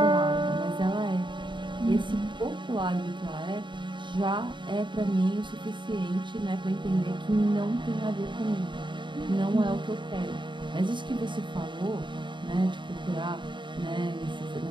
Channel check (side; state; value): left; late; 0.23 ms